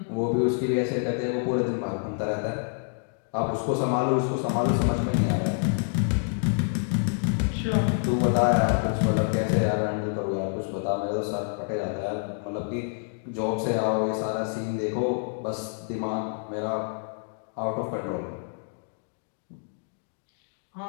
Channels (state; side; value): silent; right; 60 dB below the other